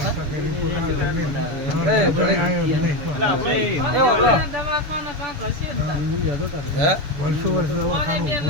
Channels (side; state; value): left; late; 6.8 ms